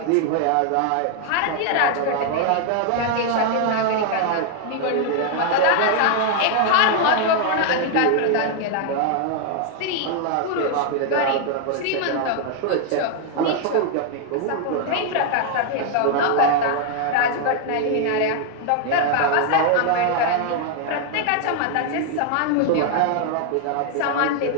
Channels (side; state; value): both; different; correlation 0.00